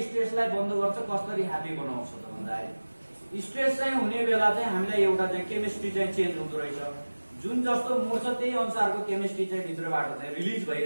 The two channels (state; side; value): inverted; both; correlation -1.00